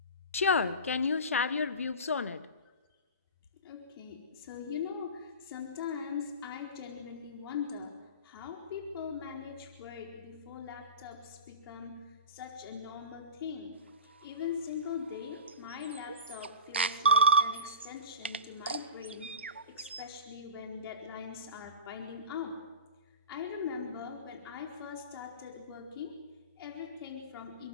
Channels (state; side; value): inverted; both; correlation -0.32